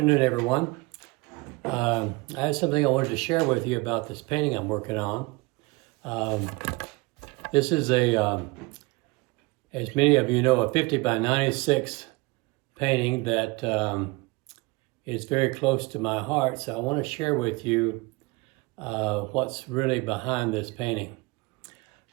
everyone. I had something I wanted to share with you about this painting I'm working on. This is as many of you know, a 50 by 96 painting that is very close to my heart. So I want to share with you what's really behind this painting.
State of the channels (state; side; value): quieter; left; 25.0 dB